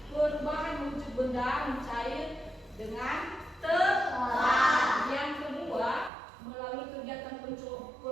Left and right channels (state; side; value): drops out; left; at 6.1 s